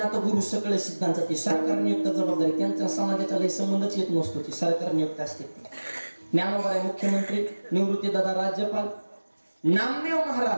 गुरु सकळ सिद्धांचा ती सरकार नियुक्त जबाबदारी, त्यांचा समाजाचा लय संबंधच येत नसतो, ती सरकार नियुक्त असते. ज्ञानोबराय मुख्यमंत्री, निवृत्तीदाता राज्यपाल. नामदेव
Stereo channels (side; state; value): both; inverted; correlation -1.00